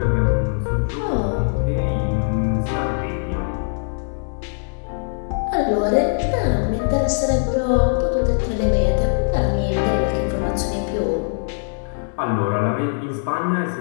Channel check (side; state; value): right; silent; digital silence